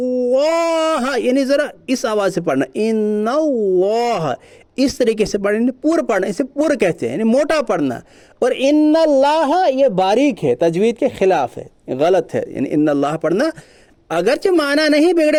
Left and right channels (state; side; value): identical; both; correlation 1.00